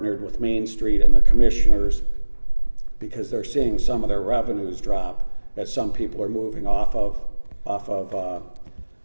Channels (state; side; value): inverted; both; correlation -1.00